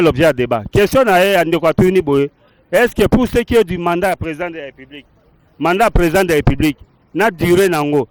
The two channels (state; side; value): identical; both; correlation 1.00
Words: l'objet de débat. Question à Ndekatuni Boye. Est-ce que pour ce qui est du mandat président de la République, n'a duré nango,